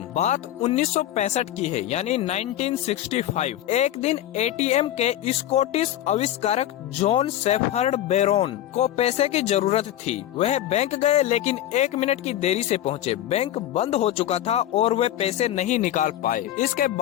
बात 1965 की है, यानी 1965। एक दिन एटीएम के स्कॉटिश आविष्कारक जॉन शेफर्ड बेरोन को पैसे की जरूरत थी। वह बैंक गए लेकिन 1 मिनट की देरी से पहुंचे। बैंक बंद हो चुका था और वे पैसे नहीं निकाल पाए। इसके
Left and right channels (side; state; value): right; quieter; 12.6 dB